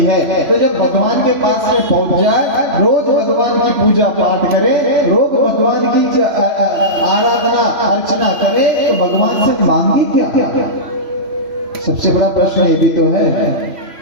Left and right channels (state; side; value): late; left; 3.1 ms